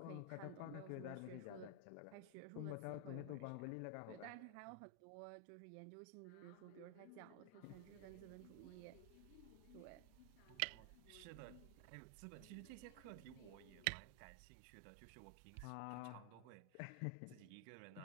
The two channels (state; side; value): different; both; correlation 0.00